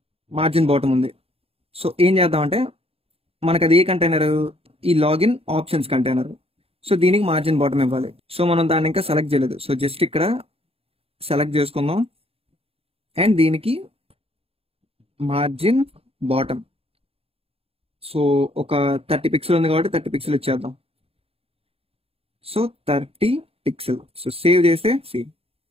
మార్జిన్ బాటమ్ ఉంది. సో ఏం చేద్దామంటే మనకు అది ఏ కంటైనర్, ఈ లాగిన్ ఆప్షన్స్ కంటైనర్. సో దీనికి మార్జిన్ బాటమ్ ఇవ్వాలి. సో మనం దాన్ని ఇంకా సెలెక్ట్ చేయలేదు. సో జస్ట్ ఇక్కడ సెలెక్ట్ చేసుకుందాం అండ్ దీనికి మార్జిన్ బాటమ్. సో ఒక 30 పిక్సెల్ ఉంది కాబట్టి 30 పిక్సెల్ ఇచ్చేద్దాం. So 30 pixel. సో సేవ్ చేస్తే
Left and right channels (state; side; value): late; left; 0.28 ms